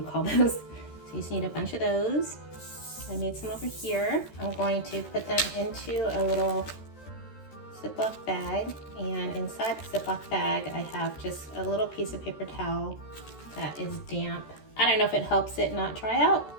call those. So you just need a bunch of those. I made some over here. I'm going to put them into a little Ziploc bag, and inside the Ziploc bag I have just a little piece of paper towel that is damp. I don't know if it helps it not dry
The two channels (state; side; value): late; right; 13 ms